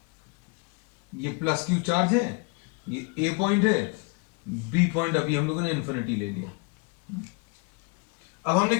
ये प्लस क्यू चार्ज है, ये ए पॉइंट है, बी पॉइंट अभी हम लोगों ने इंफिनिटी ले लिया। अब हमने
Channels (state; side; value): quieter; right; 31.2 dB